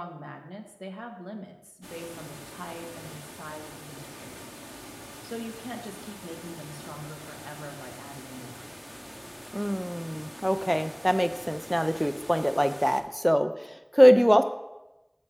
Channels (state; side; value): identical; both; correlation 1.00